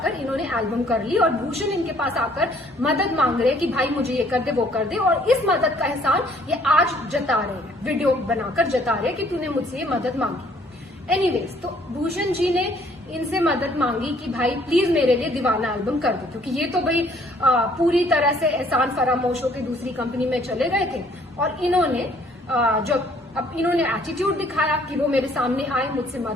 इन्होंने एल्बम कर ली और भूषण इनके पास आकर मदद मांग रहे कि भाई मुझे ये कर दे वो कर दे, और इस मदद का एहसान ये आज जता रहे हैं, वीडियो बनाकर जता रहे हैं कि तूने मुझसे ये मदद मांगी। एनीवेज, तो भूषण जी ने इनसे मदद मांगी कि भाई प्लीज मेरे लिए दीवाना एल्बम कर दो, क्योंकि ये तो भाई पूरी तरह से एहसान फरामोश होकर दूसरी कंपनी में चले गए थे। और इन्होंने जब अब इन्होंने एटीट्यूड दिखाया कि वो मेरे सामने आए, मुझसे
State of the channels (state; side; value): normal; both; correlation 0.61